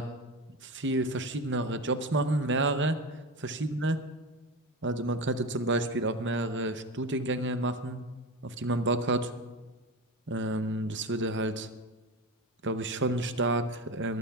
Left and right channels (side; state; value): both; normal; correlation 0.23